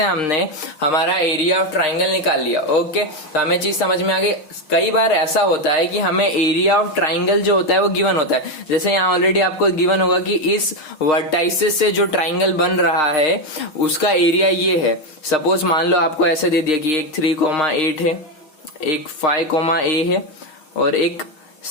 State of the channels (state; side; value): late; right; 6.5 ms